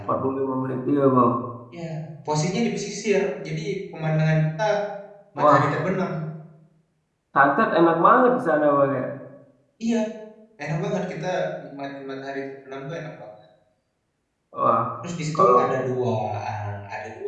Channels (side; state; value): both; identical; correlation 1.00